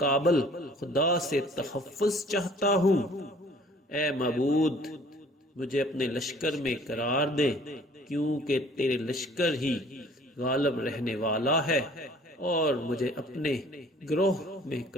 خدا سے تحفظ چاہتا ہوں۔ اے معبود، مجھے اپنے لشکر میں قرار دے، کیونکہ تیرے لشکر ہی غالب رہنے والا ہے، اور مجھے اپنے گروہ میں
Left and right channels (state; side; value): normal; both; correlation 0.53